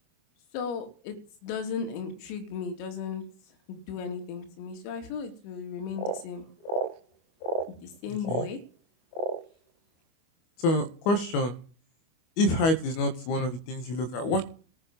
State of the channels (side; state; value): right; late; 25 ms